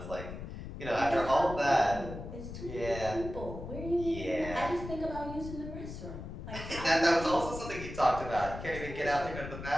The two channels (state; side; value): noise; left; rumble, 9 dB below the sound